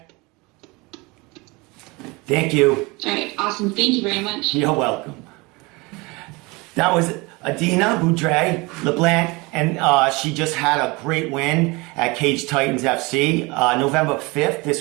Thank you. All right, awesome. Thank you very much. You're welcome. That was Adina Beaudry LeBlanc, and she just had a great win at Cage Titans FC, November 5th.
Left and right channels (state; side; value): quieter; left; 25.3 dB